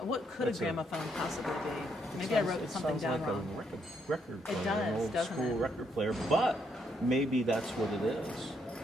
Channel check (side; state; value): both; normal; correlation 0.74